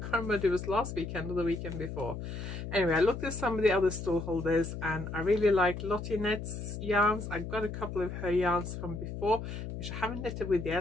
remember if it was last weekend or the weekend before. Anyway, I looked at some of the other stall holders and I really liked Lottie Knit's yarns. I've got a couple of her yarns from before, which I haven't knitted with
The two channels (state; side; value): noise; left; hum, 7 dB below the sound